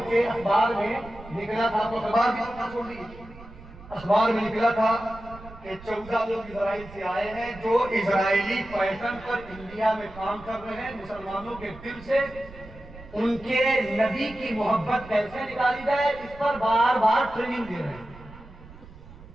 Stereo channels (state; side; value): noise; right; rumble, 18 dB below the sound